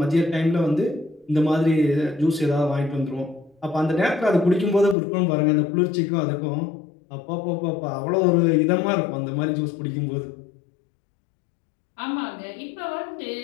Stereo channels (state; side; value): drops out; right; at 5.0 s